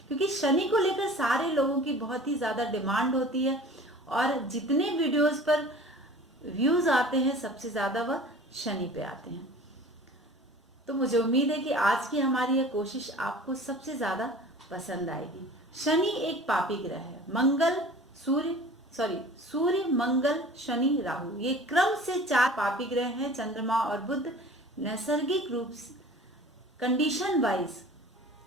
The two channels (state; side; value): normal; both; correlation 0.43